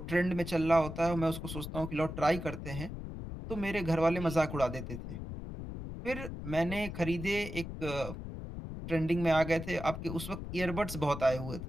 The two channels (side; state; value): left; noise; rumble, 8 dB below the sound